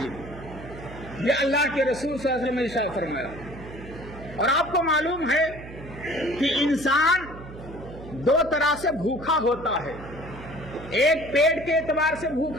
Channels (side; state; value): right; noise; hum, 14 dB below the sound